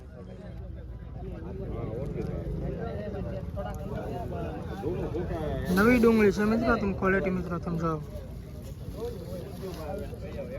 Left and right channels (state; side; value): identical; both; correlation 1.00